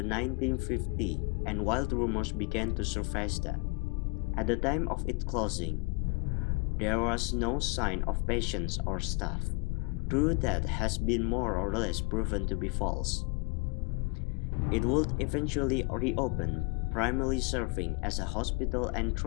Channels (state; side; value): quieter; right; 30.2 dB